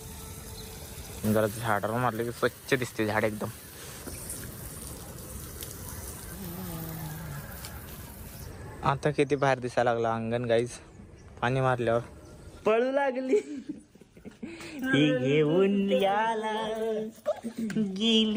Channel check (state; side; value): identical; both; correlation 1.00